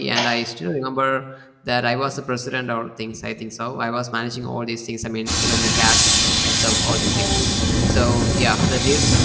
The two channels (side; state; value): both; identical; correlation 1.00